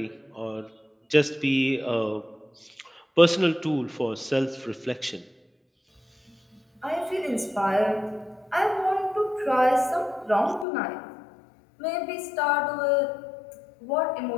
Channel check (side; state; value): right; drops out; at 10.7 s